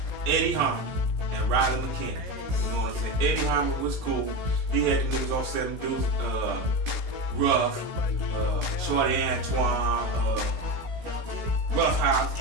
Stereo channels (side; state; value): left; late; 16 ms